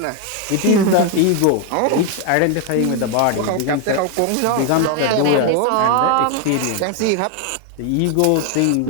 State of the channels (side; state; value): both; different; correlation 0.01